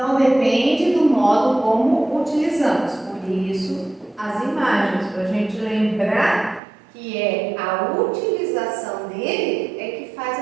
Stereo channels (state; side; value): drops out; left; at 6.6 s